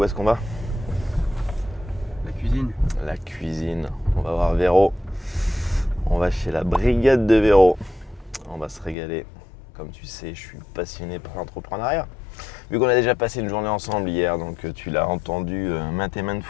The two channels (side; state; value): right; drops out; at 9.0 s